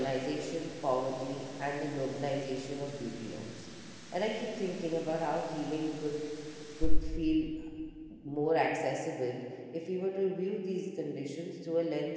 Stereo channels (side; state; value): both; identical; correlation 1.00